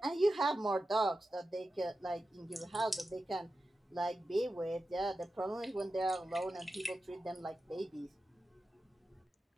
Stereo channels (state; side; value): normal; both; correlation 0.92